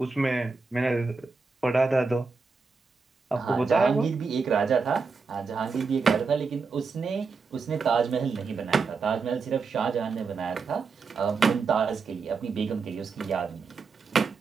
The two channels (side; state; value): left; quieter; 4.7 dB